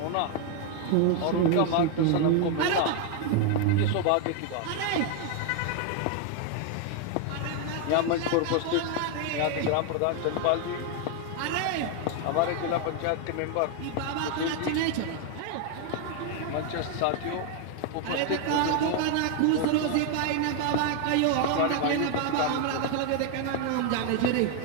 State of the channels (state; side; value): different; both; correlation 0.00